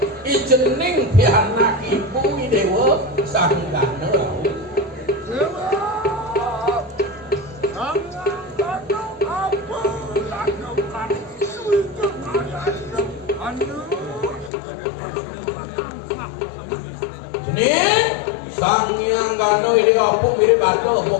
ijening pianak ibu dewa sanggana sang yang gano ini apa mirip ada apa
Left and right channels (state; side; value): drops out; right; at 14.5 s